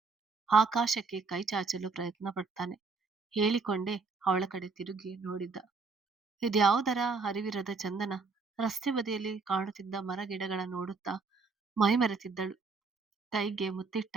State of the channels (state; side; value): quieter; left; 4.4 dB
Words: ಆಕಾಶಕ್ಕೆ ಕೈ ಚಾಚಲು ಪ್ರಯತ್ನ ಪಡ್ತಾನೆ. ಹೇಳಿಕೊಂಡೇ ಅವಳ ಕಡೆ ತಿರುಗಿ ನೋಡಿದ್ದ. ಇದ್ಯಾವುದರ ಅರಿವಿರದ ಚಂದನ. ರಸ್ತೆ ಬದಿಯಲ್ಲಿ ಕಾಣುತ್ತಿದ್ದ ಮರ ಗಿಡಗಳ ನೋಡುತ್ತಾ ಮೈಮರೆತಿದ್ದಳು. ಕೈಗೆ